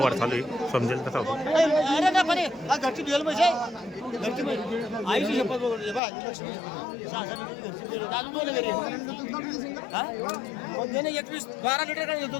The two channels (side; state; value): right; drops out; at 6.0 s